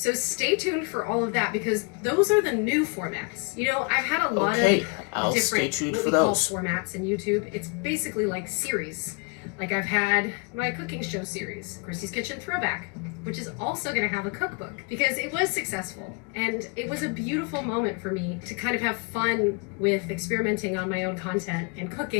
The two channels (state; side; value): quieter; right; 33.6 dB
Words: stay tuned for all of that because those are the new formats. You know, I've had a lot of different formats in YouTube. It's basically like series. Like I've had my cooking show series, Christy's Kitchen Throwback, which is also going to have a cookbook because it was successful. And it was a beautiful moment for me to kind of have fun with experimenting on my own content and